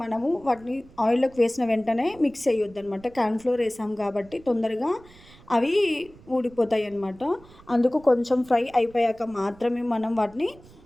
మనము వాటిని ఆయిల్‌లోకి వేసిన వెంటనే మిక్స్ చేయొద్దనమాట. కార్న్ ఫ్లోర్ వేసాం కాబట్టి తొందరగా అవి ఊడిపోతాయన్నమాట. అందుకు కొంచెం ఫ్రై అయిపోయాక మాత్రమే మనం వాటిని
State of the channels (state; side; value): noise; right; rumble, 24 dB below the sound